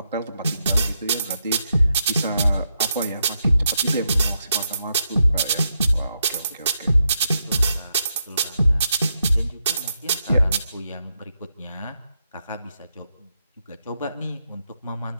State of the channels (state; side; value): inverted; both; correlation -0.82